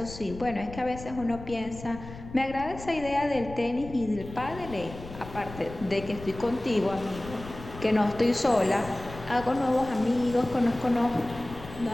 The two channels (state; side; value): noise; left; rumble, 14 dB below the sound